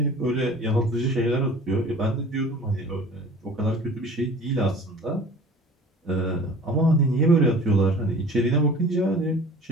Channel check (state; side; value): normal; both; correlation 0.44